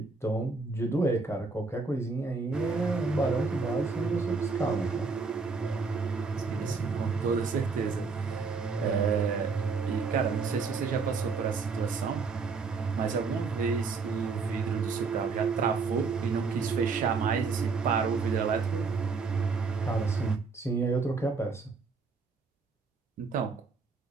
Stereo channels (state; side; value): quieter; left; 4.6 dB